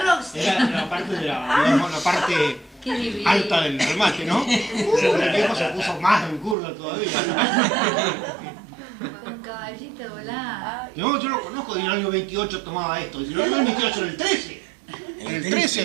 rocks. Era la parte digamos, la parte Qué divino. alta del remate, ¿no? Pero el viejo se puso más en curva todavía. Con caballito volado. No, yo lo conozco, en el año 28 tomaba esto. Dice, no, en el 28, en el 13. En el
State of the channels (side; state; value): left; drops out; at 6.6 s